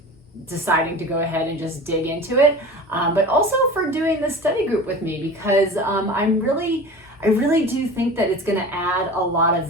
deciding to go ahead and just dig into it, but also for doing this study group with me, because I really do think that it's going to add a lot of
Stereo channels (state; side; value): normal; both; correlation 0.35